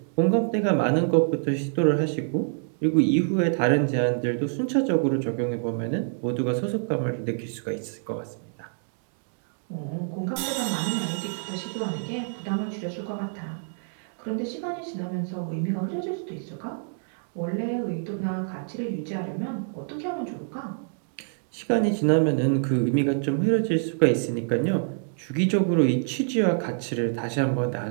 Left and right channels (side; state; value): left; silent; digital silence